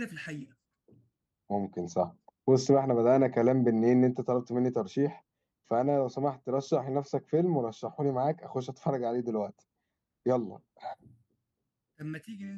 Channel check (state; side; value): identical; both; correlation 1.00